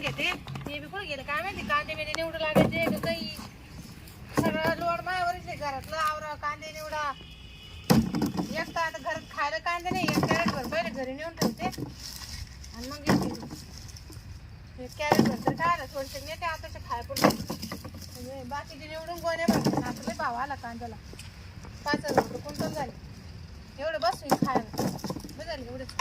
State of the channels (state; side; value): identical; both; correlation 1.00